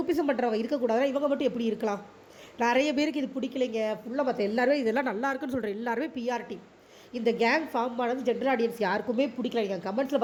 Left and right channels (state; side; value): identical; both; correlation 1.00